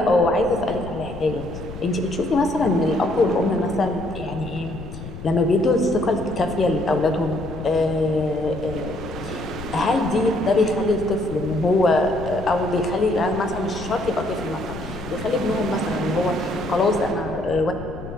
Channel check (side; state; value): left; noise; rumble, 11 dB below the sound